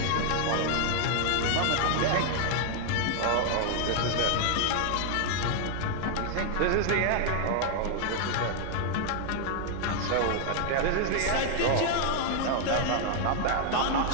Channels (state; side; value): different; both; correlation 0.00